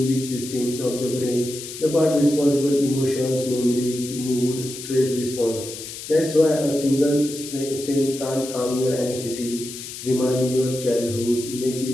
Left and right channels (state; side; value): noise; left; hiss, 10 dB below the sound